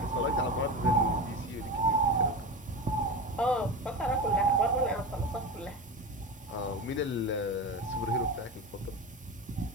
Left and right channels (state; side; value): normal; both; correlation 0.24